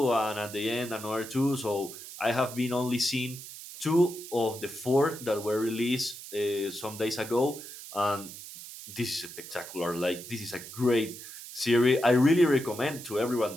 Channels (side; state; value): right; noise; hiss, 13 dB below the sound